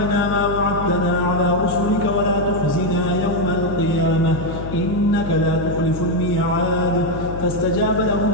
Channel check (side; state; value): left; noise; hum, 8 dB below the sound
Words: ما وعدتنا على رسلك ولا تخزنا يوم القيامة إنك لا تخلف الميعاد فاستجاب لهم